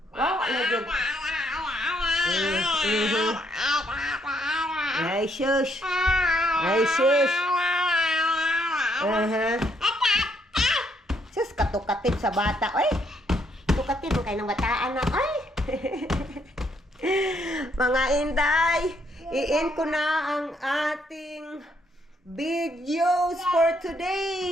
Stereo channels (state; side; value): normal; both; correlation 0.72